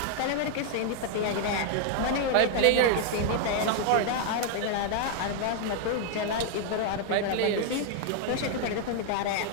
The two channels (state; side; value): different; both; correlation 0.00